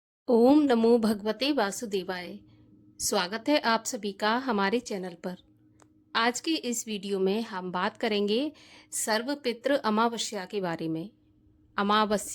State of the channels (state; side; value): identical; both; correlation 1.00